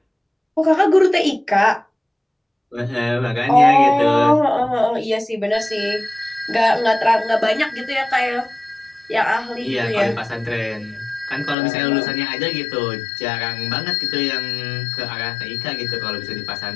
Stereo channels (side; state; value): right; drops out; at 11.6 s